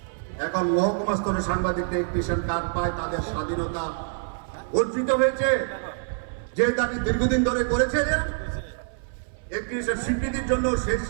এখন মহকুমা স্তরে সাংবাদিকরা ইলেকট্রিশিয়ান কার্ড পায়, তাদের স্বাধীনতা অর্জিত হয়েছে। যে দাবি দীর্ঘদিন ধরে করেছিলেন ইলেকট্রিশিয়ান স্বীকৃতির জন্য, সেই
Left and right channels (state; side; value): silent; left; 61 dB below the other